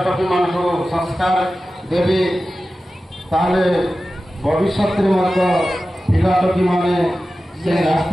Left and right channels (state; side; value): normal; both; correlation 0.94